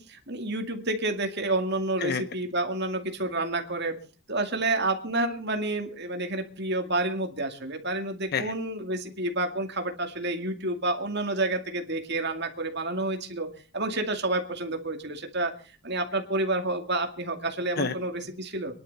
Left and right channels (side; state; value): both; normal; correlation -0.13